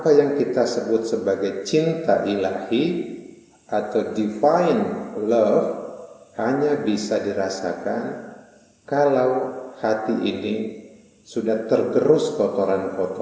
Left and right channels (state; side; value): identical; both; correlation 1.00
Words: yang kita sebut sebagai cinta ilahi atau divine love hanya bisa dirasakan kalau hati ini sudah tergerus